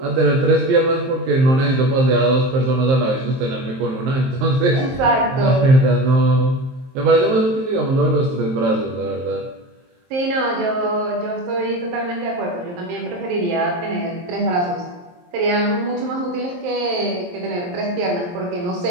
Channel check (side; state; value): left; late; 23 ms